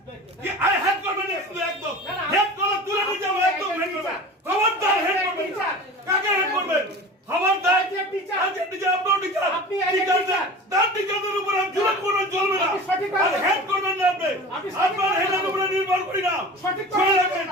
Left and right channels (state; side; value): normal; both; correlation 0.36